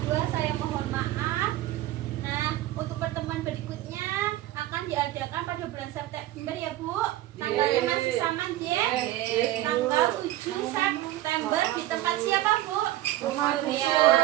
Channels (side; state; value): left; quieter; 15.2 dB